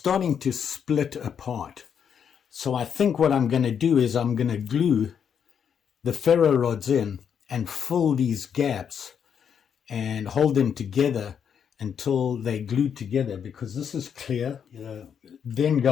to split apart. So I think what I'm going to do is I'm going to glue the ferro rods in and fill these gaps and hold them together until they glue together, because this is clear. Then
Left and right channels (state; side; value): quieter; right; 7.7 dB